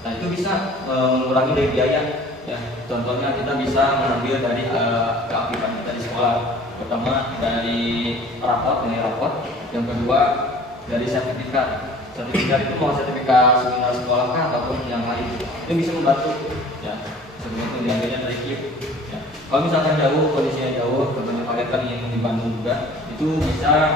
Nah itu bisa mengurangi dari biaya ya. Contohnya kita bisa mengambil dari keaktifan kita di sekolah, pertama dari rapot, yang kedua dari sertifikat itu mau sertifikat seminar sekolah kah ataupun yang lain, itu bisa membantu ya. Sebelum itu diambilnya dari KIP ya. Kalau misalkan jauh, kondisinya jauh, contohnya kalian kan yang di Bandung juga, itu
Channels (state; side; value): normal; both; correlation 0.48